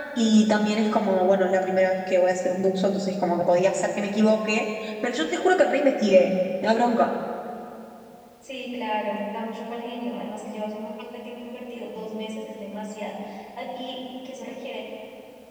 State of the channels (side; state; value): both; identical; correlation 1.00